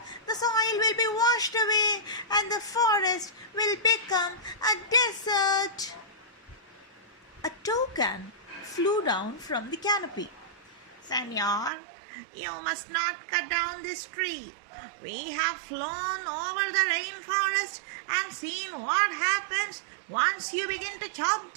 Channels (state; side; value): drops out; left; at 11.7 s